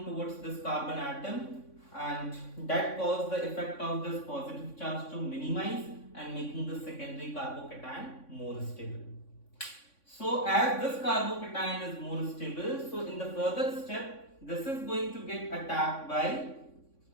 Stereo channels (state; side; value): late; right; 3.6 ms